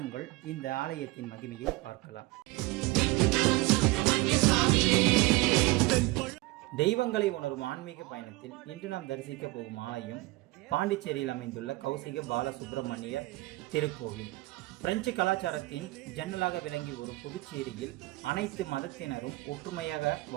இந்த ஆலயத்தின் மகிமையை பார்க்கலாம். தெய்வங்களை உணரும் ஆன்மீக பயணத்தில் இன்று நாம் தரிசிக்க போகும் ஆலயம் பாண்டிச்சேரியில் அமைந்துள்ள கௌசிக பாலசுப்பிரமணியர் திருக்கோவில். பிரெஞ்சு கலாச்சாரத்தின் ஜன்னலாக விளங்கி வரும் புதுச்சேரியில் அனைத்து மதத்தினரும் ஒற்றுமையாக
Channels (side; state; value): left; quieter; 21.4 dB